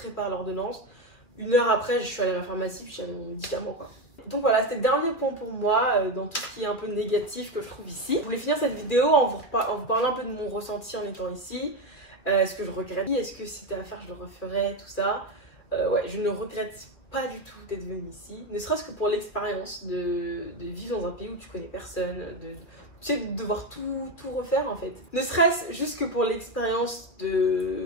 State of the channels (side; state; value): right; late; 2.6 ms